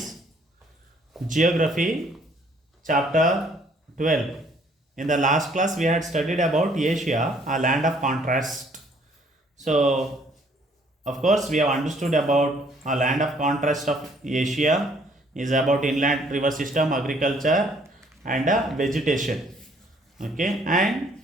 Geography, chapter 12. In the last class, we had studied about Asia, a land of contrast. So, of course, we have understood about a land of contrast of Asia is about inland river system, agriculture, and vegetation. Okay, and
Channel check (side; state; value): both; normal; correlation 0.62